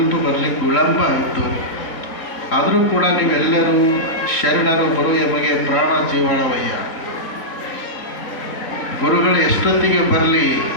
ಬರಲಿಕ್ಕೆ ವಿಳಂಬ ಆಯಿತು. ಆದರೂ ಕೂಡ ನೀವೆಲ್ಲರೂ ಶರಣರು ಬರು ಎಮಗೆ ಪ್ರಾಣ ಜೀವಾಳವಯ್ಯ. ಗುರುಗಳು ಎಷ್ಟೊತ್ತಿಗೆ ಬರಲಿ,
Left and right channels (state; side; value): late; right; 4.0 ms